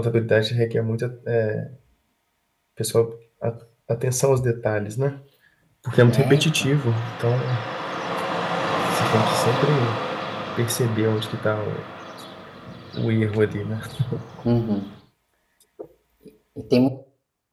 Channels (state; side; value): identical; both; correlation 1.00